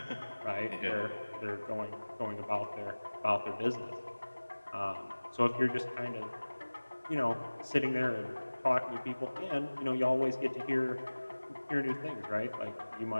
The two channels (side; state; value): both; inverted; correlation -1.00